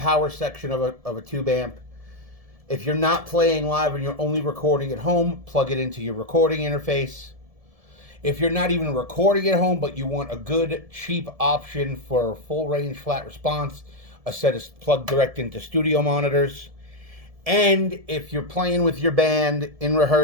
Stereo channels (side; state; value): left; late; 1.7 ms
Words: section of a tube amp. If you're not playing live and you're only recording at home, plug it into your recording interface. If you're not even recording at home, but you want a good, cheap option for full range flat response, a set is plugged direct into studio monitors. And if you're playing with your band in